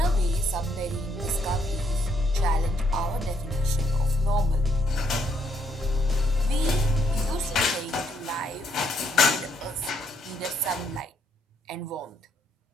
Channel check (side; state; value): both; normal; correlation 0.72